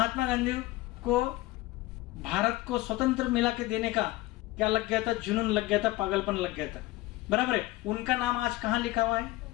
गांधी को भारत को स्वतंत्र मिला के देने का क्या लग गया था? जुनून लग गया था, पागलपन लग गया था, बराबर है। उनका नाम आज कहां लिखा हुआ है?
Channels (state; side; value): quieter; right; 18.8 dB